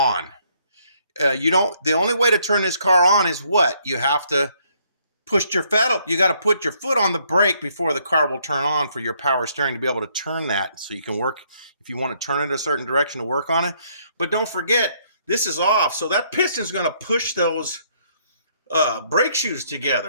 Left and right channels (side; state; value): both; inverted; correlation -0.69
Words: The only way to turn this car on is what? You have to push your foot up. You got to put your foot on the brake before the car will turn on for your power steering to be able to turn that. So you can work, if you want to turn it a certain direction to work on it. But don't forget, this is off. So that piston is going to push those brake shoes